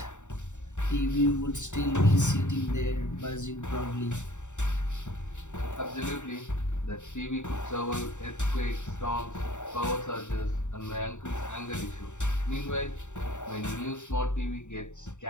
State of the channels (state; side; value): late; right; 0.84 ms